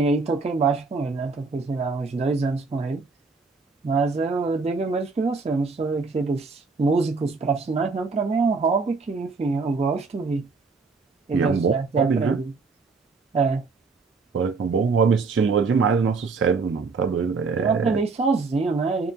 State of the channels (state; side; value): quieter; left; 4.3 dB